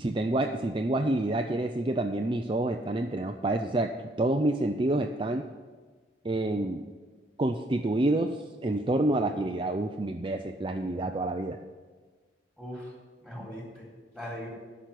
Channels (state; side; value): normal; both; correlation 0.66